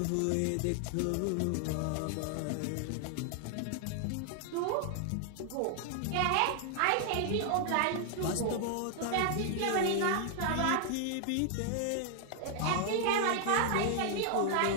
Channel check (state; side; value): different; both; correlation 0.00